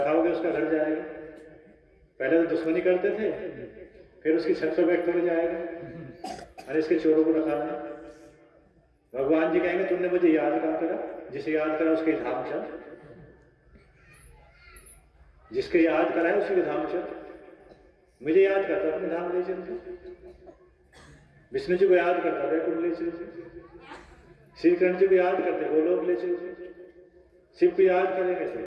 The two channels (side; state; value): both; identical; correlation 1.00